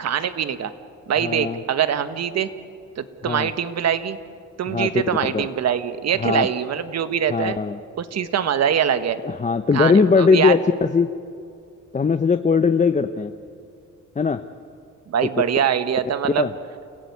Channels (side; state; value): both; normal; correlation 0.25